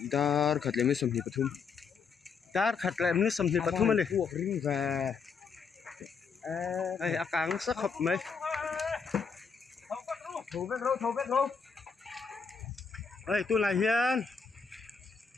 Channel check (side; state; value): right; quieter; 5.6 dB